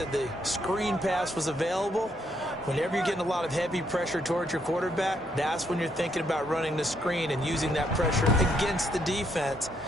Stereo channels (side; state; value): both; normal; correlation 0.74